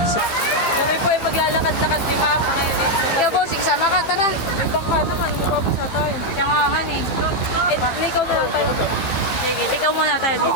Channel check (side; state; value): right; late; 15 ms